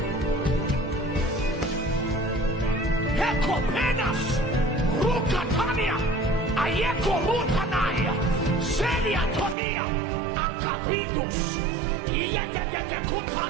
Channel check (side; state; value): left; drops out; at 9.6 s